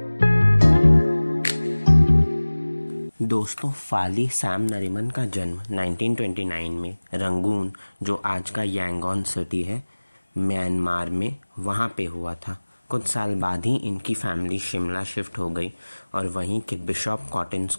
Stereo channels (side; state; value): both; inverted; correlation -1.00